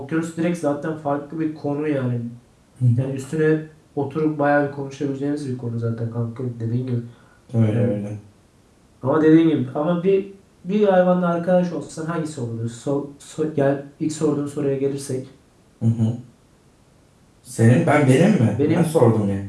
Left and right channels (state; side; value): identical; both; correlation 1.00